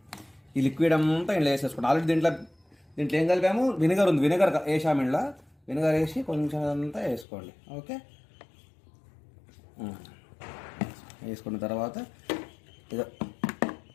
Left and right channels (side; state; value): right; drops out; at 7.2 s